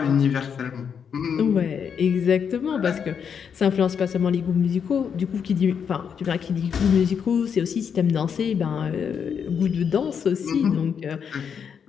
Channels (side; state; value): right; quieter; 7.2 dB